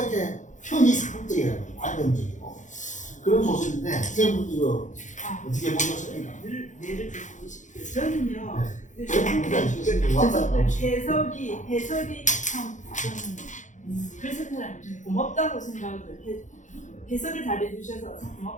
형이상학적이라는 관념적이고 그런 소설인데 선생님 이거 어떻게 보셨습니까? 예를 들고 싶어요. 저는요. 네. 해석이 참 저는 그래서 사람이 좀 고맙다고 생각을 해석을 잘해주셔서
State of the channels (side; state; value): right; late; 0.36 ms